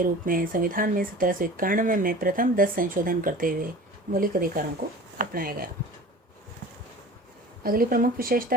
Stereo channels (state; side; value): normal; both; correlation 0.40